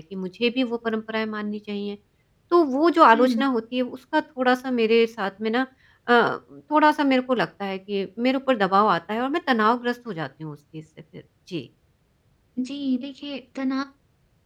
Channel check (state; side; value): identical; both; correlation 1.00